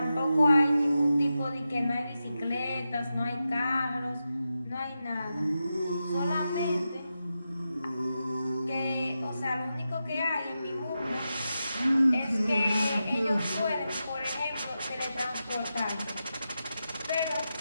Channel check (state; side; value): inverted; both; correlation -0.90